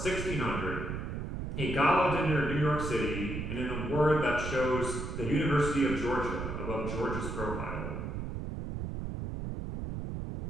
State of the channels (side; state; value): right; noise; rumble, 5 dB below the sound